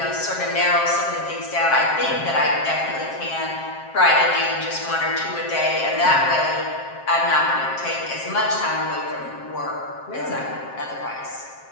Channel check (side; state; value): right; late; 7.5 ms